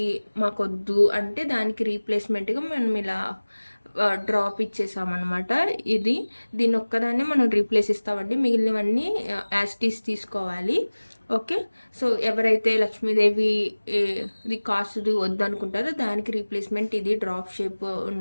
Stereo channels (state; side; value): inverted; both; correlation -1.00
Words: మాకొద్దు అంటే దానికి రీప్లేస్మెంట్గా మనం ఇలా డ్రాప్ ఇచ్చేసామన్నమాట. దీని ఒక్కదాన్ని మనం రీప్లేస్ ఇస్తామండి. మిగిలినవన్నీ యాస్టీస్ తీసుకోవాలి. ఓకే సో ఎవరైతే లక్ష్మీదేవి ఇది కాసుది వద్దనుకుంటారో దానికి రీప్లేస్మెంట్ ఇది డ్రాప్ షేప్